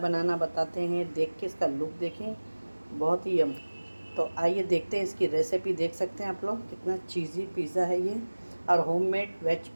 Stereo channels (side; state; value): both; inverted; correlation -1.00